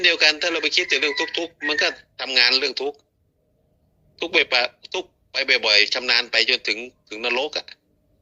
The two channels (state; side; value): identical; both; correlation 1.00